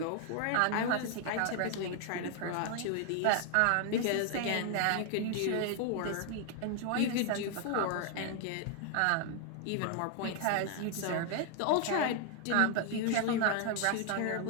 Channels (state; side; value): different; both; correlation 0.00